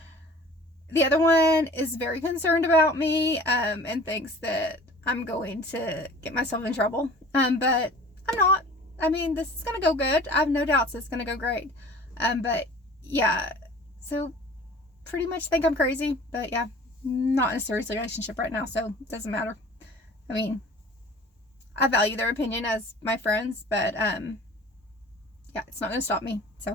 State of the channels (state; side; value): normal; both; correlation 0.45